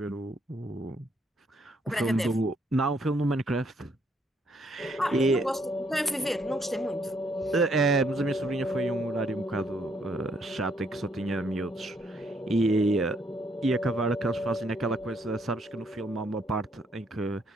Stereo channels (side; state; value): both; normal; correlation 0.70